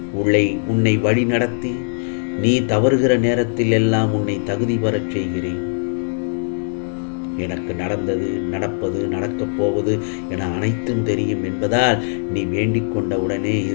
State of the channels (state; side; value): silent; right; digital silence